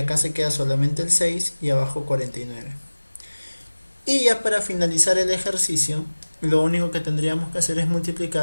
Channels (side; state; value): both; inverted; correlation -1.00